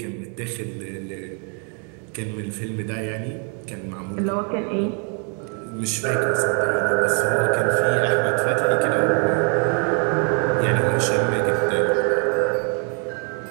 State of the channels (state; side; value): quieter; left; 39.8 dB